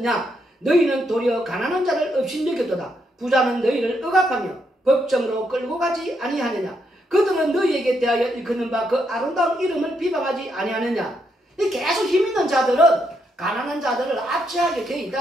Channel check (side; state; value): both; normal; correlation 0.78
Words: 너희는 도리어 가난한 자를 업신여겼도다. 부자는 너희를 억압하며 법정으로 끌고 가지 아니하느냐. 그들은 너희에게 대하여 일컫는 바 그 아름다운 이름을 비방하지 아니하느냐. 계속 힘있는 자들은 가난한 자들을 압제하게 되어